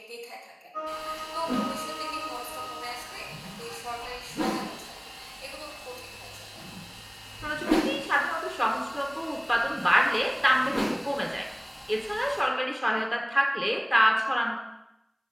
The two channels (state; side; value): identical; both; correlation 1.00